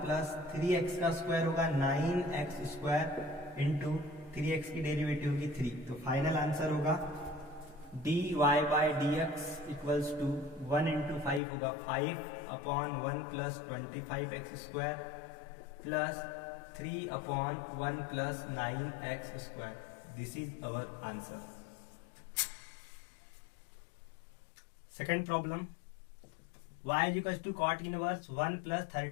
प्लस 3x का square होगा 9x स्क्वायर इंटू 3x की डेरिवेटिव होगी 3। तो फाइनल आंसर होगा dy by dx equals to 1 into 5 होगा 5 upon 1 plus 25x square plus 3 upon 1 plus 9x square. This is our answer. Second problem, y is equal to cot inverse 1 plus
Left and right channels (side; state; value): right; drops out; at 11.4 s